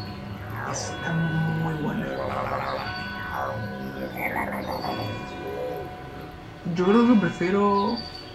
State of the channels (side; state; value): both; identical; correlation 1.00